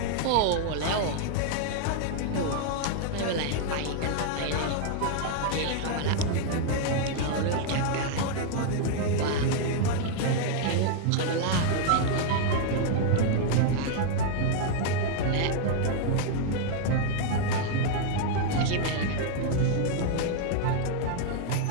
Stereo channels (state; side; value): different; both; correlation 0.00